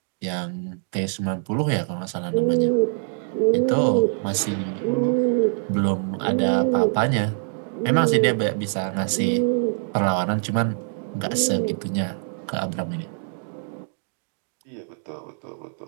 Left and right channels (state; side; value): silent; left; 61 dB below the other